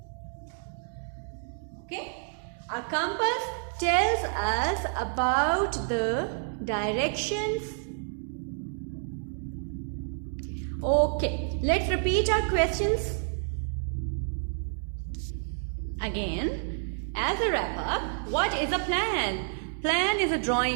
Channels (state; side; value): silent; left; digital silence